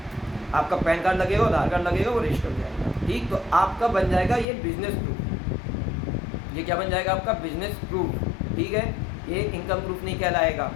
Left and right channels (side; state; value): right; drops out; at 4.5 s